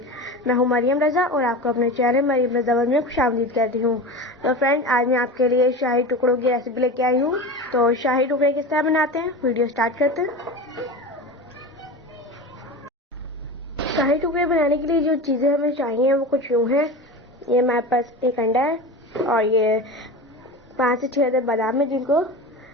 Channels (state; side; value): normal; both; correlation 0.28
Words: मैं हूं मरियम रज़ा और आपको अपने चैनल मरियम रज़ा वर्ल्ड में खुशामदीद कहती हूं। तो फ्रेंड्स, आज मैं आपके लिए शाही टुकड़ों की रेसिपी लेके आई हूं। तो शाही टुकड़े किस तरह बनाते हैं, वीडियो स्टार्ट करते हैं। शाही टुकड़े बनाने के लिए जो चीज़ें हमें चाहिए वो कुछ यूँ हैं। ये हमारे पास एक अंडा है और ये 5 से 6 बादाम है जिनको